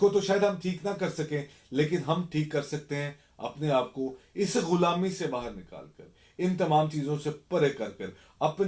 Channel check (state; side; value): identical; both; correlation 1.00